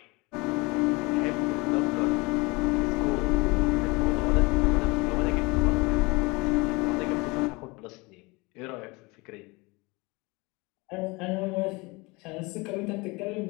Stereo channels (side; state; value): right; quieter; 25.5 dB